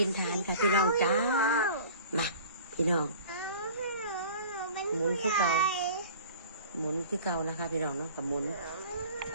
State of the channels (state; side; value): inverted; both; correlation -0.44